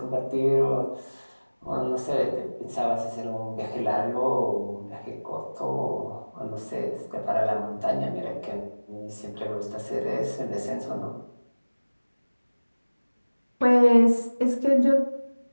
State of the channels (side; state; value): both; inverted; correlation -1.00